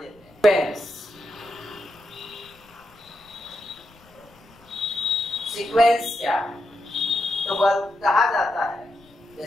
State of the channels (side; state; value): left; noise; rumble, 28 dB below the sound